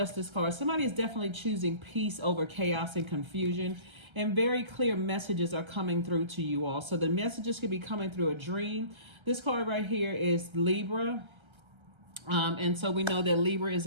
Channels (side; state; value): left; late; 1.3 ms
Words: card. Somebody is definitely choosing peace over chaos and confusion. And very clear messages are coming through to you all. So the messages could be coming through a dream. This card right here is Libra. And so we know that Libra is